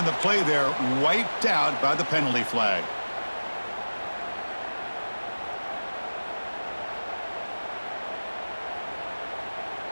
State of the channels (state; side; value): inverted; both; correlation -1.00